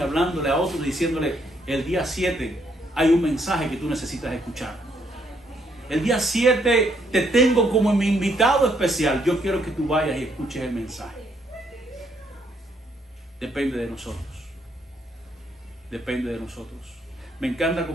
a otros, diciéndole, el día 7 hay un mensaje que tú necesitas escuchar. El día 7 te tengo como mi invitado especial. Yo quiero que tú vayas y escuches el mensaje. Depende de nosotros. Depende de nosotros. Me encanta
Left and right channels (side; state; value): both; normal; correlation 0.72